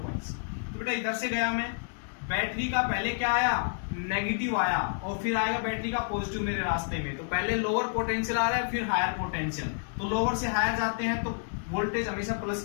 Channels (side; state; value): right; silent; digital silence